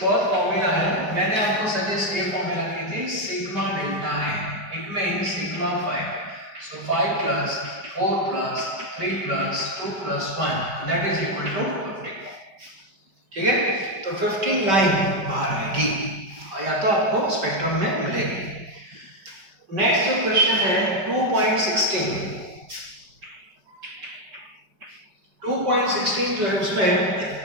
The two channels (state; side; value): late; left; 5.0 ms